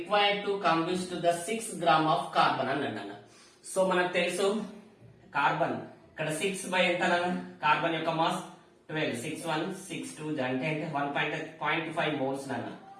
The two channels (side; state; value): both; identical; correlation 1.00